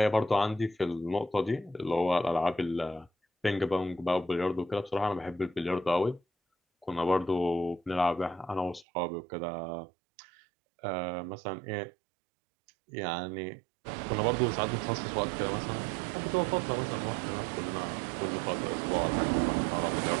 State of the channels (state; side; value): drops out; left; at 8.8 s